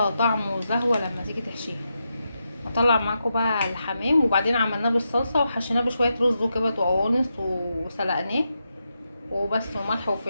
طعم وزهوه لما تيجي تحشيها. هطلع معاكم بقى الحمام، وبعدين عملناه بالصلصه وحشيناه بشويه رز وكبد وقوانص وسلقناه وبس، وملح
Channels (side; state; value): both; inverted; correlation -0.86